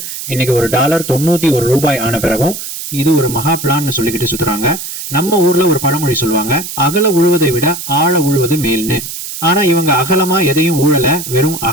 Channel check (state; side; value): noise; right; hiss, 8 dB below the sound